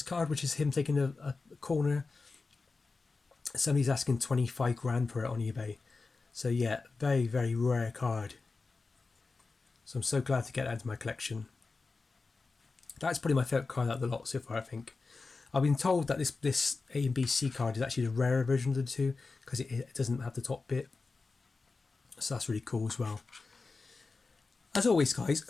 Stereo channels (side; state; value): right; quieter; 4.0 dB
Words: card, which is him taking a corner, somebody's asking 25 grand for it on eBay. So yeah, very, very rare card. So I'm so glad to get that into my collection. That's probably my favourite card out of the lot so far, I think. I've been told that this A and B C card is actually the rarer version of the 2 because it doesn't have the top bit. So that's really cool as well. As always, guys,